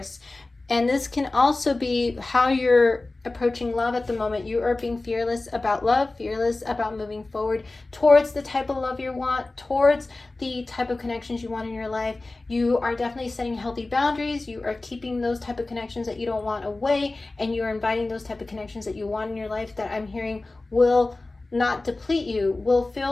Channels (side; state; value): right; quieter; 3.2 dB